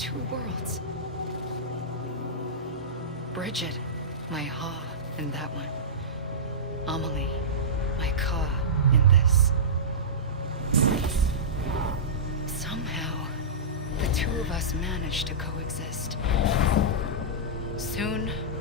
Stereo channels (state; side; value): normal; both; correlation -0.17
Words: worlds. Bridget, my ha in that one. Amelie, my ka in this. Somehow, the two of us managed to coexist. Soon,